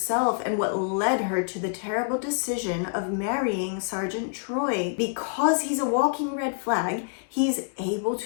and what led her to the terrible decision of marrying Sergeant Troy. Because he's a walking red flag, he's able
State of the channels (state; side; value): silent; right; digital silence